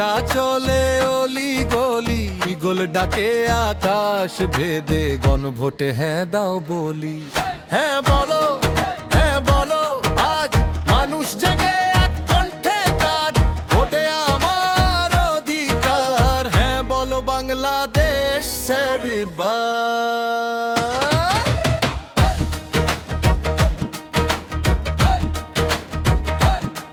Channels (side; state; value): both; identical; correlation 1.00